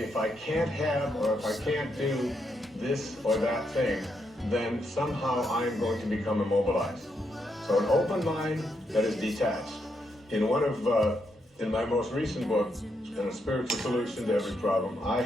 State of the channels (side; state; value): both; normal; correlation 0.80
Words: I can't have or if I can't do this or that thing, then somehow I'm going to become immobilized. So an open mind that is detached. In my most recent book, in A Spiritual Solution to Every Problem, I